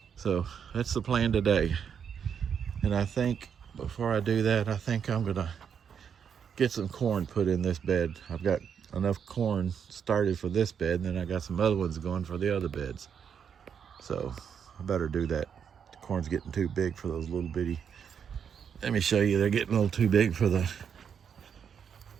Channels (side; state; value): left; quieter; 7.5 dB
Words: So that's the plan today. And I think before I do that, I think I'm gonna get some corn put in this bed. I've got enough corn started for this bed, and then I got some other ones going for the other beds. So I better do that. The corn's getting too big for those little bitty. Let me show you, they're getting a little too big for the